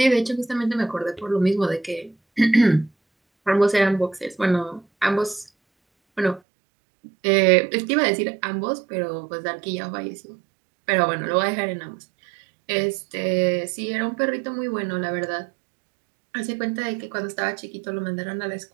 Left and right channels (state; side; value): drops out; left; at 6.4 s